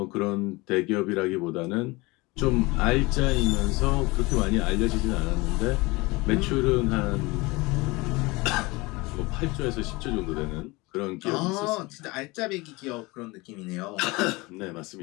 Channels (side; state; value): right; quieter; 23.6 dB